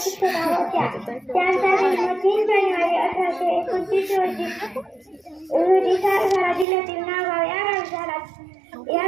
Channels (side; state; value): left; drops out; at 6.7 s